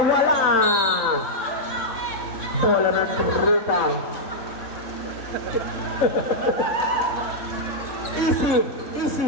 Wala. Bola ng Rita. Easy.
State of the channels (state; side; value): late; right; 3.6 ms